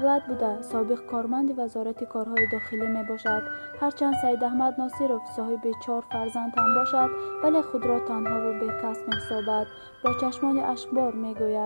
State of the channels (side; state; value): both; inverted; correlation -1.00